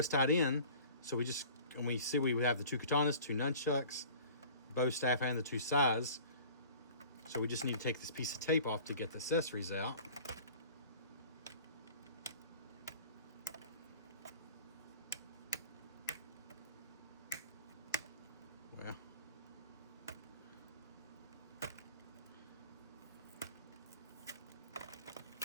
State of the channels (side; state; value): both; inverted; correlation -0.45